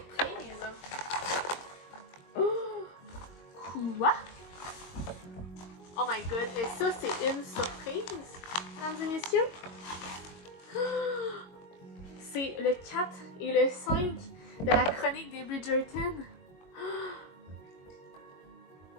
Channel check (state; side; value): late; right; 22 ms